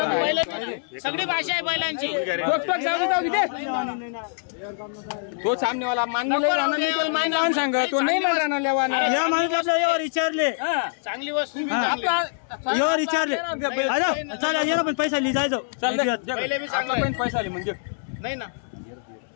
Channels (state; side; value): silent; right; digital silence